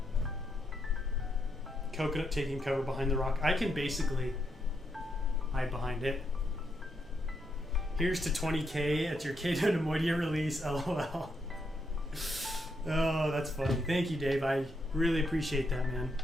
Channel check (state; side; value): normal; both; correlation 0.80